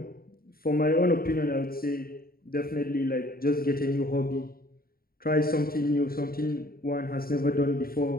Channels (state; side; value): late; right; 0.43 ms